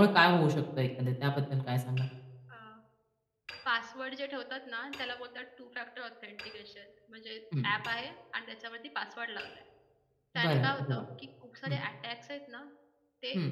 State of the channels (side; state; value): both; identical; correlation 1.00